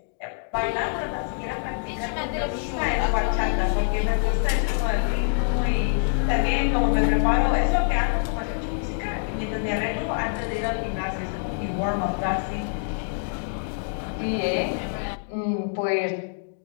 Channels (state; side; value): silent; right; digital silence